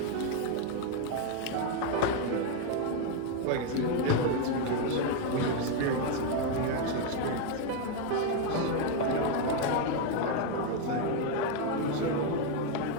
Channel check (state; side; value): different; both; correlation 0.01